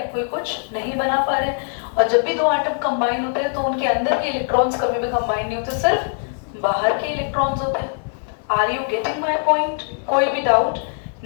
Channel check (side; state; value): right; silent; 65 dB below the other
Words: कोई कुछ नहीं बना पा रहे हैं। और जब भी 2 एटम कंबाइन होते हैं तो उनके अंदर के इलेक्ट्रॉन्स कभी भी कंबाइन नहीं होते, सिर्फ बाहर के इलेक्ट्रॉन्स होते हैं। Are you getting my point? कोई भी डाउट?